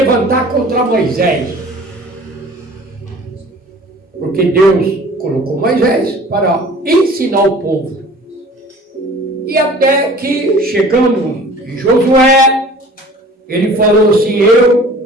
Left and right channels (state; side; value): normal; both; correlation 0.46